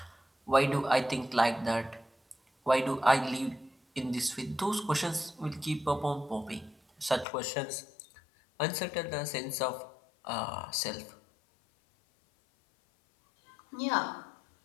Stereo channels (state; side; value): drops out; right; at 7.2 s